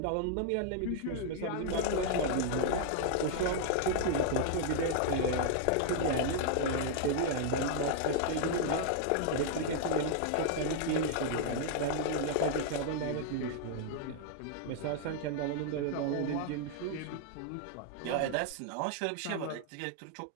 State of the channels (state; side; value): different; both; correlation -0.01